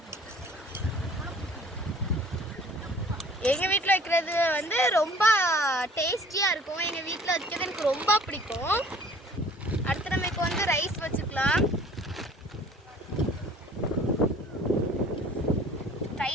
எங்கள் வீட்டில் வைக்கிறது வந்து ரொம்ப டேஸ்டியாக இருக்கும். எங்கள் வீட்டில் வைக்கிறது எனக்கு ரொம்ப பிடிக்கும். அடுத்து நம்ம இப்போ வந்து ரைஸ் வச்சுக்கலாம்.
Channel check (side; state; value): both; normal; correlation 0.51